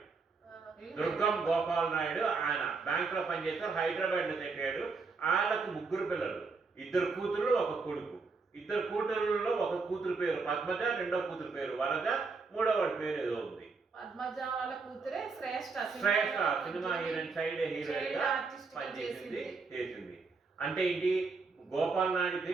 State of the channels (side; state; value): left; quieter; 4.5 dB